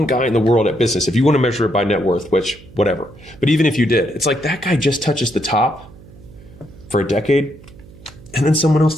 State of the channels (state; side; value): noise; right; hum, 21 dB below the sound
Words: guy in the world at business, if you want to measure it by net worth, which whatever, but even if you did, it's like that guy just touches the top for a decade, and then someone else